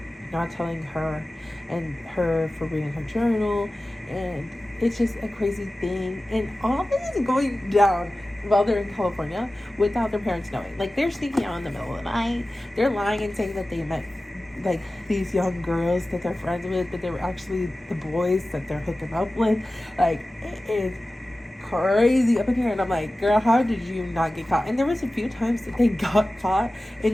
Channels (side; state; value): both; normal; correlation 0.96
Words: not telling her and her for reading her journal, and it's just a crazy thing. And all this is going down while they're in California without their parents knowing. Like, they're sneaking out in the middle of the night, they're lying and saying that they met, like, these young girls that they're friends with, but they were actually the boys that they're hooking up with. Like, it is crazy up in here, and I'm like, girl, how did you not get caught? And there was a few times that they got caught